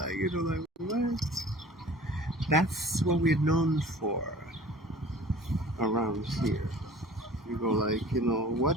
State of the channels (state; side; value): normal; both; correlation 0.45